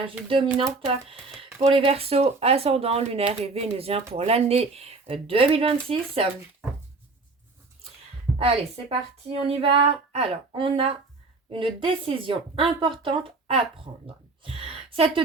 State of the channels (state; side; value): quieter; left; 3.7 dB